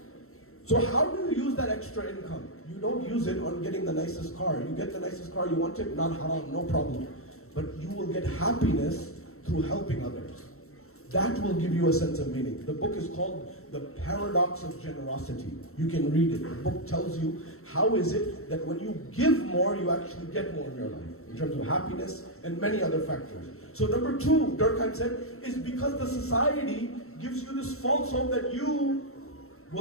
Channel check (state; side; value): late; right; 0.63 ms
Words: So how do you use that extra income? You don't use it on getting the nicest car. You get the nicest car, you want it, not haram, no problem. But you will get happiness through helping others. That will give you a sense of meaning. The book is called The Paradox of Generosity. You can read it. The book tells you how is it that when you give more, you actually get more in your life, in terms of happiness and many other factors. So number two, Durkheim said, is because the society gives you this false hope that you